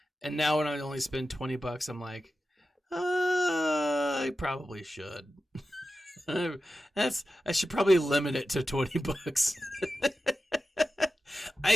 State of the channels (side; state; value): both; normal; correlation 0.92